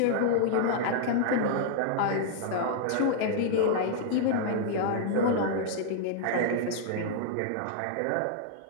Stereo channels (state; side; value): different; both; correlation -0.01